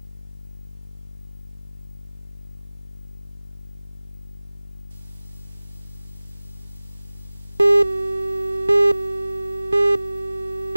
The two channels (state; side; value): inverted; both; correlation -0.99